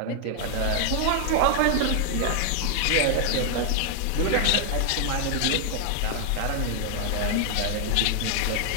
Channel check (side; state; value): both; different; correlation 0.00